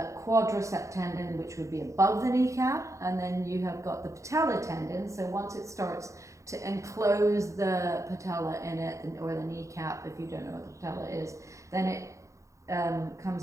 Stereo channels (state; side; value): late; left; 0.15 ms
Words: Tendon, which would be above the kneecap, and then you have got the Patella Tendon. So once it starts to enclose the patella in it, or the kneecap, if you don't know what the patella is, then it comes